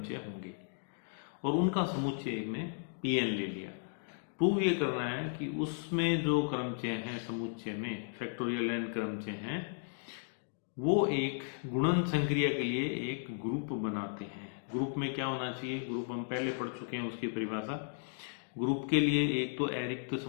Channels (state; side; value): silent; right; digital silence